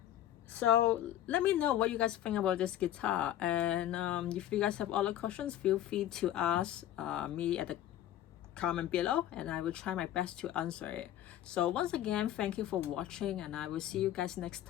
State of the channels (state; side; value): quieter; right; 12.2 dB